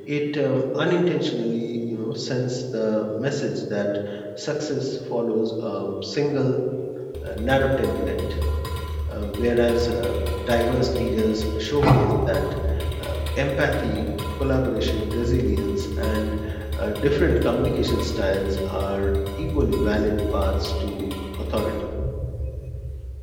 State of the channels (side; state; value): both; identical; correlation 1.00